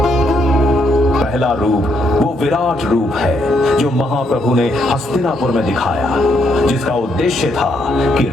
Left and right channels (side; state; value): both; normal; correlation 0.75